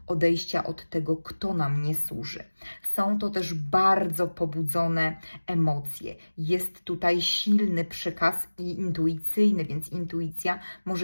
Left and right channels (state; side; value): inverted; both; correlation -1.00